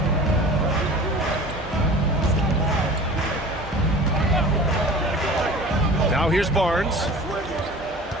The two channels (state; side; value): normal; both; correlation 0.40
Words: Now here's Barnes.